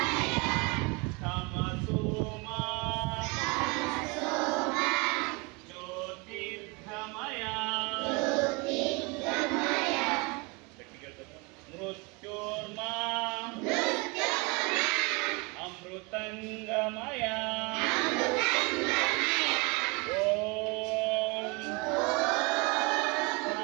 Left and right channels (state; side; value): quieter; left; 28.0 dB